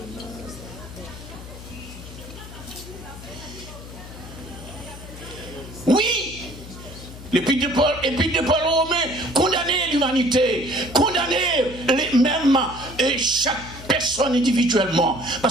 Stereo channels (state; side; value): noise; left; hum, 14 dB below the sound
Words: Oui, l'épître de Paul Romain condamner l'humanité, condamner les mêmes et chaque personne individuellement,